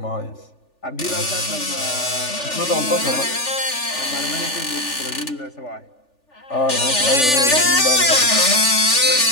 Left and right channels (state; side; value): late; right; 3.4 ms